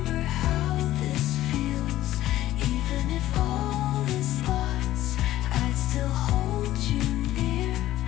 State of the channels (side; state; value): right; quieter; 14.4 dB